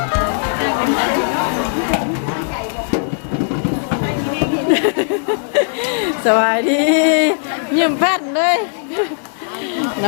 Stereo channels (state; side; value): silent; right; 59 dB below the other